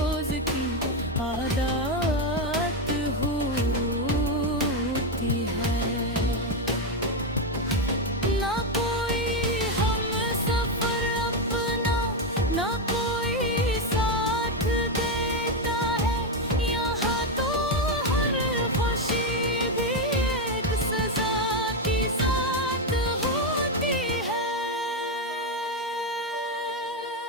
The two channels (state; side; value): normal; both; correlation 0.06